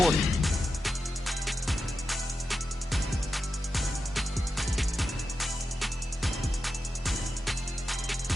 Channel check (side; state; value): both; normal; correlation 0.90